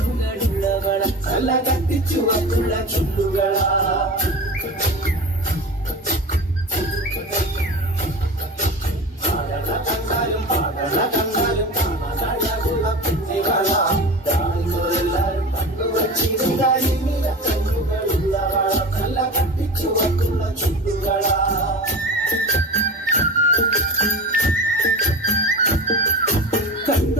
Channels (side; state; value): both; normal; correlation 0.31